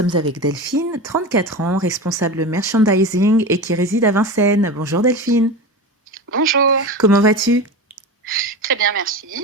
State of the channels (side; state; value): both; normal; correlation 0.26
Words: avec Delphine, 34 ans, responsable merchandising et qui réside à Vincennes. Bonjour Delphine. Bonjour. Comment vas-tu ? Très bien,